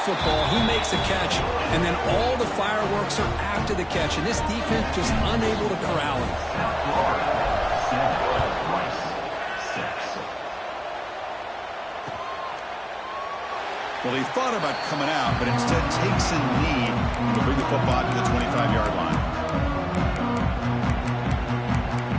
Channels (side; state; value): both; identical; correlation 1.00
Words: he makes a catch, and then all the fireworks are after the catch, and this defense just unable to corral him. Well, he thought about coming out, but instead takes a knee to bring the football to the 25-yard line.